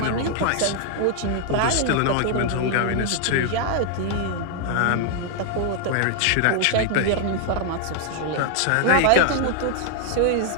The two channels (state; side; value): different; both; correlation 0.00